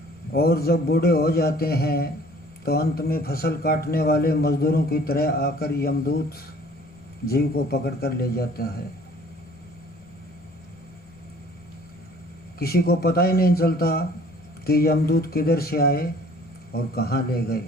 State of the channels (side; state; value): left; noise; rumble, 28 dB below the sound